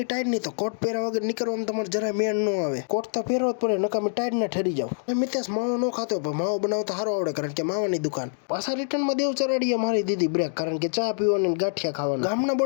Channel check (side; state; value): right; silent; digital silence